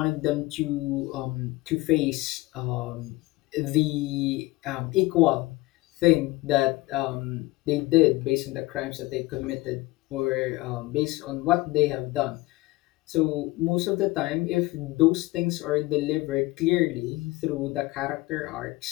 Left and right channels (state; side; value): quieter; right; 20.2 dB